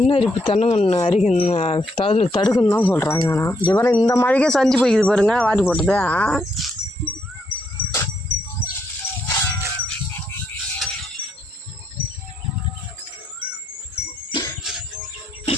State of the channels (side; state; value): both; normal; correlation 0.76